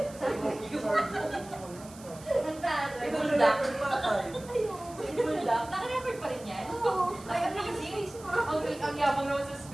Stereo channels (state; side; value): noise; right; hiss, 20 dB below the sound